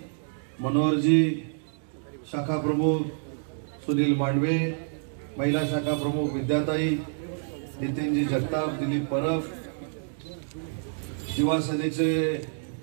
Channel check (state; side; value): silent; left; digital silence